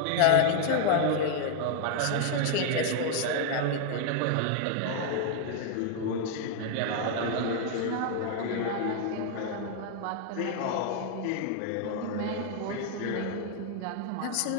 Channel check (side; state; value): both; different; correlation 0.00